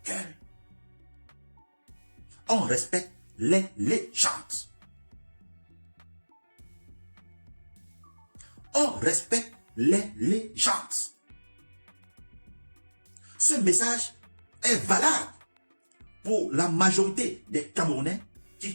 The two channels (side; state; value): both; inverted; correlation -1.00